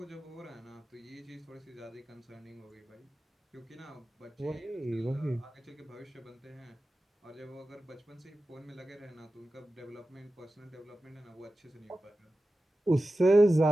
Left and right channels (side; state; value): both; normal; correlation 0.94